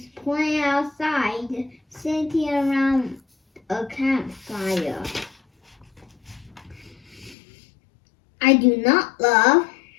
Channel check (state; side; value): drops out; right; at 7.4 s